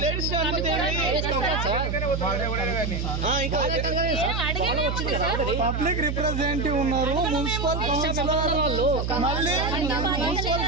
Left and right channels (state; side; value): noise; right; hum, 2 dB below the sound